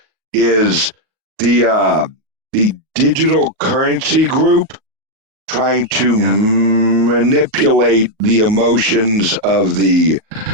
is the digital currency group trying to manipulate the emotions of the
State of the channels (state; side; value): late; left; 38 ms